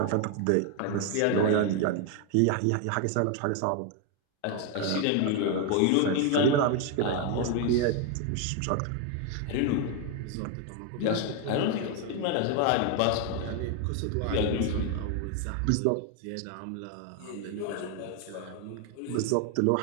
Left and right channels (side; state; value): both; different; correlation 0.01